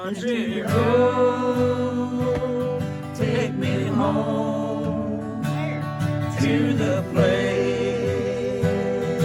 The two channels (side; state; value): both; identical; correlation 1.00